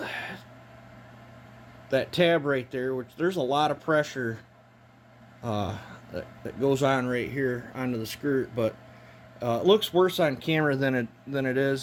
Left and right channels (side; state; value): both; identical; correlation 1.00